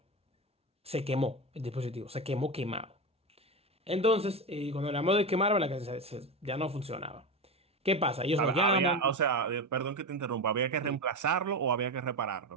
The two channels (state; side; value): normal; both; correlation 0.19